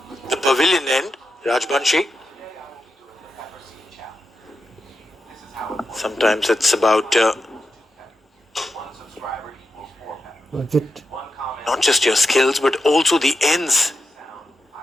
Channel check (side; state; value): both; normal; correlation 0.88